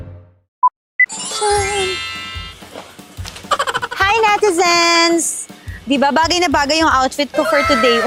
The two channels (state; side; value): identical; both; correlation 1.00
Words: Hi, netizens! Diba, bagay na bagay yung outfit ko for today,